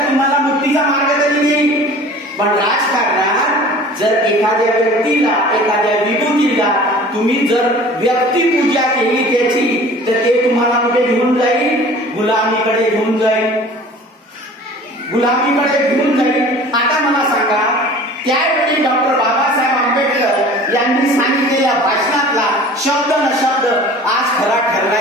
तुम्हाला मुक्तीचा मार्ग तरी देईल. पण राजकारणात जर एखाद्या व्यक्तीला, एखाद्या विभूतीला तुम्ही जर व्यक्तिपूजा केली त्याची तर ते तुम्हाला कुठे घेऊन जाईल? गुलामीकडे घेऊन जाईल. आता मला सांगा, त्यावेळी डॉक्टर बाबासाहेब आंबेडकर यांनी सांगितलेल्या भाषणातला शब्द न शब्द आज खरा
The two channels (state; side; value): normal; both; correlation 0.44